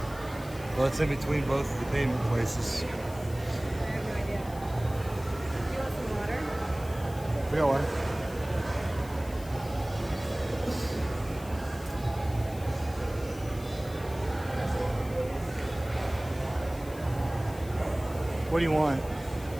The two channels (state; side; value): noise; left; hiss, 19 dB below the sound